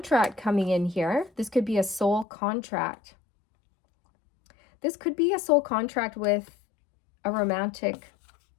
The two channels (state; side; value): drops out; right; at 2.2 s